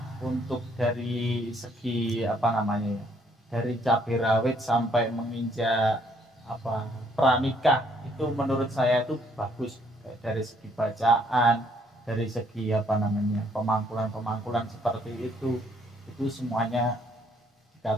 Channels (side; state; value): both; normal; correlation 0.66